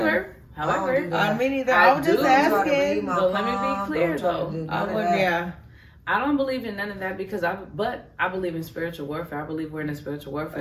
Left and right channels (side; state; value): both; identical; correlation 1.00